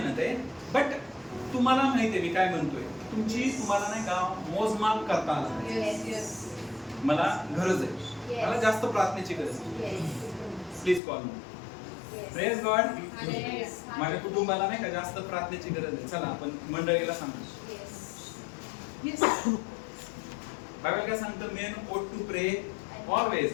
आहे. बट तुम्हाला माहिती आहे मी काय म्हणतोय, तुमची तुम्हाला नाही का मोजमाप करता आला पाहिजे. मला गरज आहे, मला जास्त प्रार्थनेची गरज आहे, please call me. Praise God. माझ्या कुटुंबाला नाही का जास्त प्रार्थनेची गरज आहे, चला आपण मंडळीला सांगू. बायबल काय सांगतं, main ought to pray always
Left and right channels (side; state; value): right; drops out; at 11.0 s